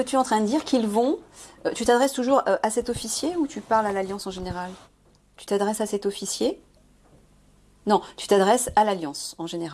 tu es en train de dire qu'ils vont... tu t'adresses toujours à cet officier ou tu parles à l'Alliance en général? Tu t'adresses à cet officier? Non, tu t'adresses à l'Alliance en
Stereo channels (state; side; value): identical; both; correlation 1.00